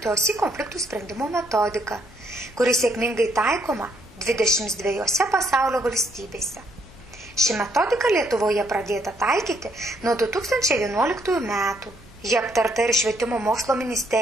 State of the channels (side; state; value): both; normal; correlation 0.71